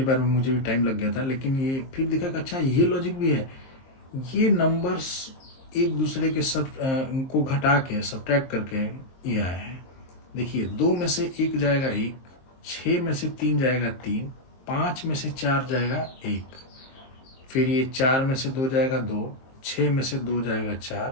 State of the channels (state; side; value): late; right; 23 ms